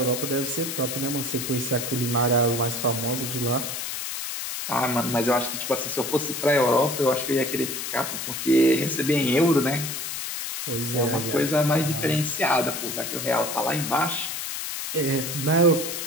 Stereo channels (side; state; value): left; noise; hiss, 5 dB below the sound